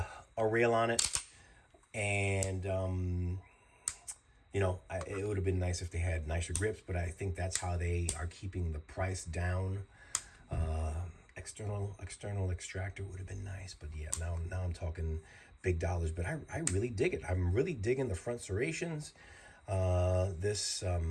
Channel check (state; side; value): identical; both; correlation 1.00